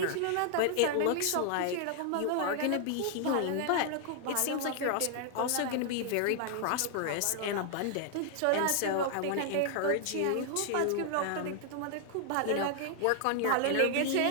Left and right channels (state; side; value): different; both; correlation 0.00